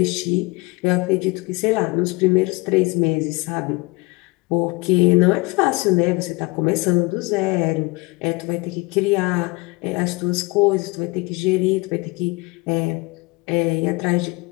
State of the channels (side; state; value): right; quieter; 25.6 dB